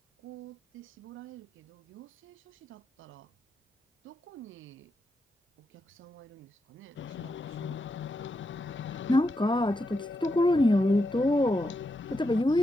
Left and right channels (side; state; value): both; normal; correlation 0.85